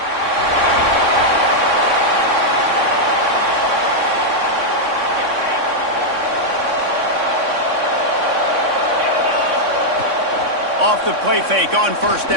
Off the play fake on first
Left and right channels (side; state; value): left; late; 3.6 ms